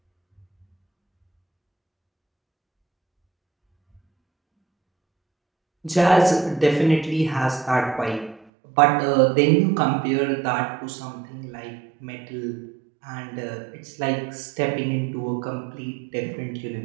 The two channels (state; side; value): drops out; left; at 8.5 s